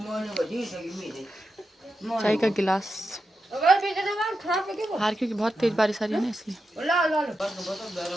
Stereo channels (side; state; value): both; normal; correlation 0.88